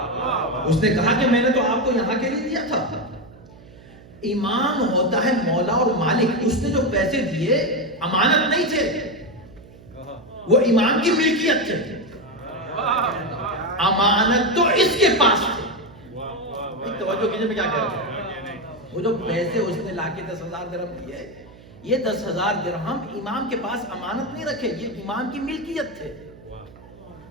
اس نے کہا کہ میں نے تو آپ کو یہاں کے لیے دیا تھا. امام ہوتا ہے مولا اور مالک. اس نے جو پیسے دیے امانت نہیں تھے، وہ امام کی ملکیت تھے. امانت تو اس کے پاس تھے. توجہ کیجئے میں کیا کہہ رہا ہوں. وہ جو پیسے اس نے لا کے 10,000 درہم دیے، یہ 10,000 درہم امام کے پاس امانت نہیں رکھے، یہ امام کی ملکیت تھے.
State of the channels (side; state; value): right; noise; hum, 21 dB below the sound